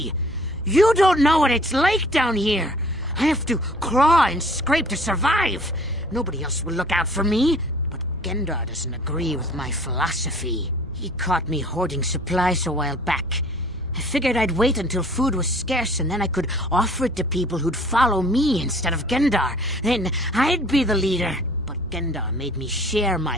You don't know what it's like down here! I have to claw and scrape to survive! Nobody else will look out for me. But Gendar doesn't agree with my philosophy. He caught me hoarding supplies a while back. I figured I'd wait until food was scarce and then I could offer it to people who'd follow me instead of Gendar. Then I'd be the leader. But Gendar made me share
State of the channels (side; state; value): both; normal; correlation 0.52